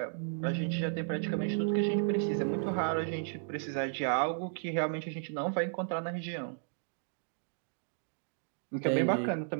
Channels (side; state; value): left; silent; digital silence